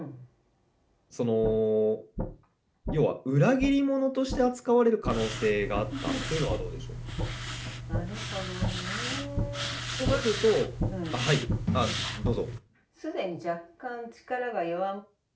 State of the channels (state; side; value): identical; both; correlation 1.00